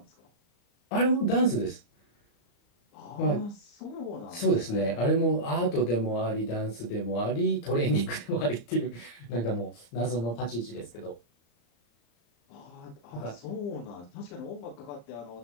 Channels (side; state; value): right; late; 34 ms